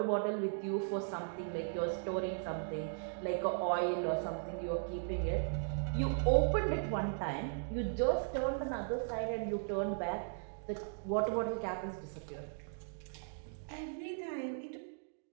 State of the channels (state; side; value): silent; left; digital silence